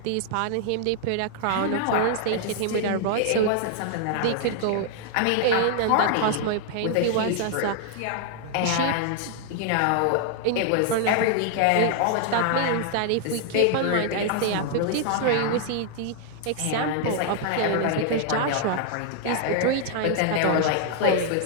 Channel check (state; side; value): different; both; correlation 0.00